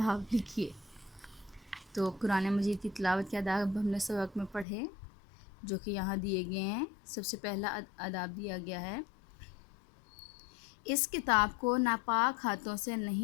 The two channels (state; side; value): drops out; right; at 4.7 s